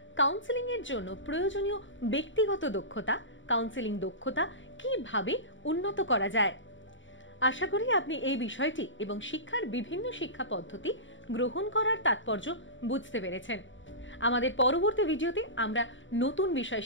কাউন্সেলিং এর জন্য প্রয়োজনীয় ব্যক্তিগত দক্ষতা, কাউন্সেলিং দক্ষতা কিভাবে উন্নত করা যায়। আশা করি আপনি এই বিষয়টি এবং শিক্ষার বিভিন্ন শিক্ষা পদ্ধতি গ্রহণ করার তাৎপর্য বুঝতে পেরেছেন। আমাদের পরবর্তী ভিডিওতে আমরা নতুন বিষয়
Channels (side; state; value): right; late; 0.55 ms